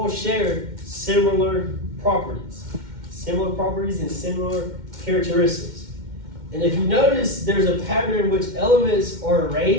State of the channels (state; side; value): late; left; 2.1 ms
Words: share similar properties. Similar properties and similar characteristics. And if you notice, there's a pattern in which elements are